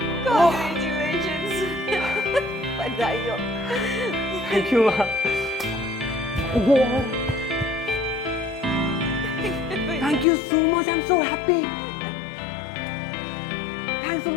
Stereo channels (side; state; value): right; drops out; at 10.2 s